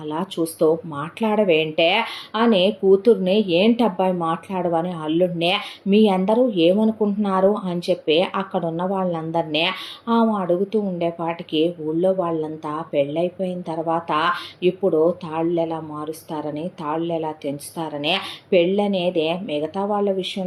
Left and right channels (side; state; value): both; identical; correlation 1.00